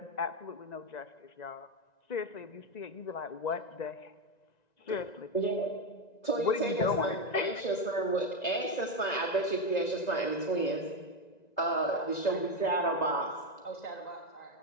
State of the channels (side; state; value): right; late; 1.9 ms